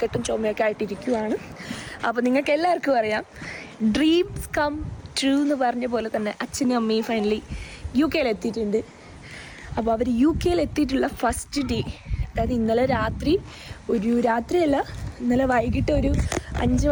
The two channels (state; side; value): identical; both; correlation 1.00